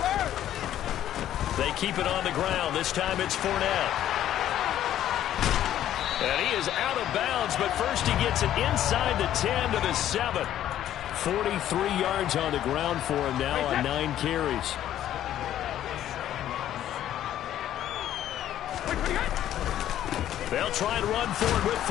They keep it on the ground. This time it's Fournette. And he is out of bounds, but first he gets it inside the 10 to the 7. 43 yards on the ground for him now on 9 carries. They'll try and run for it with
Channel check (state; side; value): quieter; right; 11.8 dB